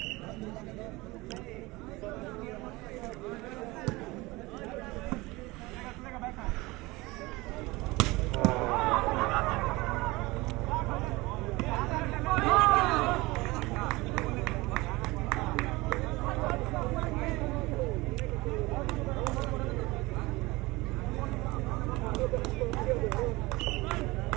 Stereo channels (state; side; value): quieter; left; 21.9 dB